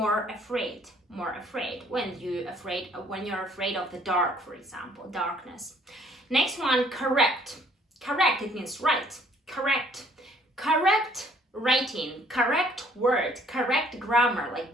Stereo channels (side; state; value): both; normal; correlation 0.61